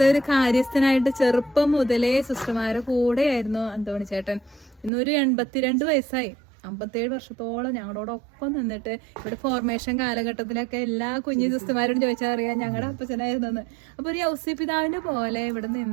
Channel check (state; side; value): drops out; left; at 4.9 s